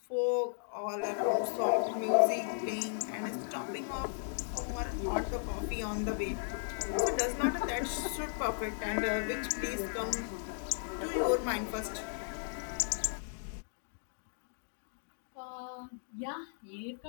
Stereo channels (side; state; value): right; silent; digital silence